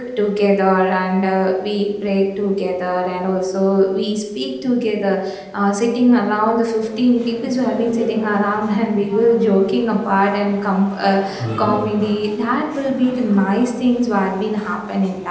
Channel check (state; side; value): identical; both; correlation 1.00